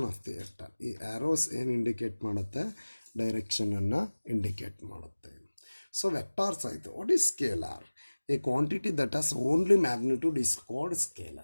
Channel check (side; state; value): both; inverted; correlation -1.00